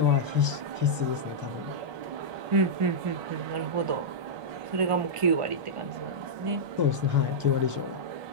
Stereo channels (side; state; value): left; late; 1.5 ms